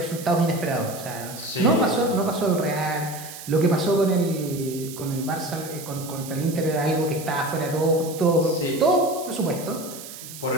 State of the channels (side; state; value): right; noise; hiss, 13 dB below the sound